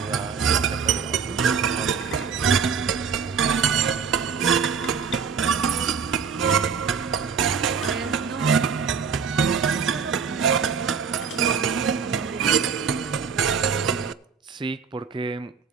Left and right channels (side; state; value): left; quieter; 6.3 dB